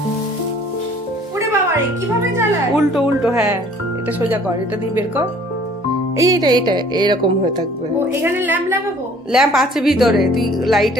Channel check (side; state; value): both; normal; correlation 0.54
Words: ওরে বাবা রে, কিভাবে জ্বালায়? উল্টো উল্টো, হ্যাঁ এটা সোজা কর, এটা দিয়ে বের কর। এইটা এইটা এরকম হয়ে থাকবে। ও এখানে ল্যাম্প লাগাবো? ল্যাম্প আছে ভিতরে, তুই